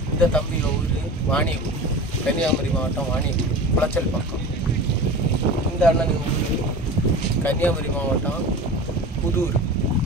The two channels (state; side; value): normal; both; correlation 0.34